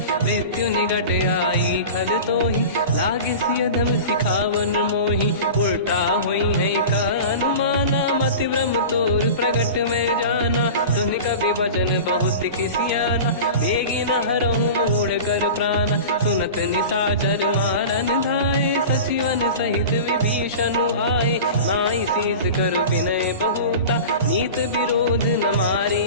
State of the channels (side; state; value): both; inverted; correlation -0.33